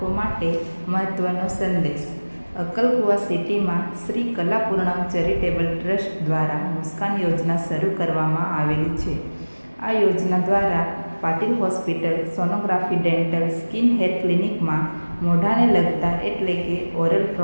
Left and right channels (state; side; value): inverted; both; correlation -1.00